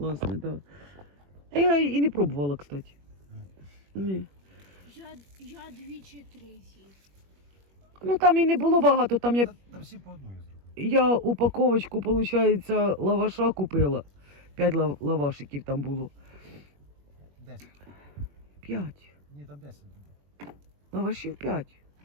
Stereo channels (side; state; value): left; late; 21 ms